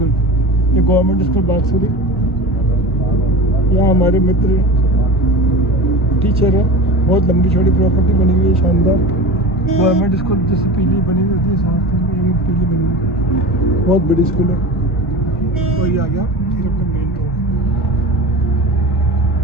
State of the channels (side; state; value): both; normal; correlation 0.31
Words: ये गवर्नमेंट स्कूल बागसुरी। यहाँ हमारे मित्र टीचर है। बहुत लंबी चौड़ी प्रॉपर्टी बनी हुई है, शानदार। गवर्नमेंट स्कूल जैसे पीली बनी हुई होती है, साथ में ये पीली बनी हुई है। बहुत बड़ी स्कूल है। और ये आ गया फिर अपना मेन रोड।